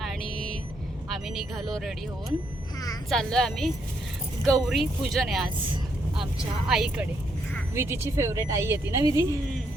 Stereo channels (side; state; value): both; normal; correlation 0.75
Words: आणि आम्ही निघालो रेडी होऊन. चाललो आहे आम्ही. गौरी पूजन आहे आज आमच्या आईकडे. विधीची फेवरेट आई येते ना विधी?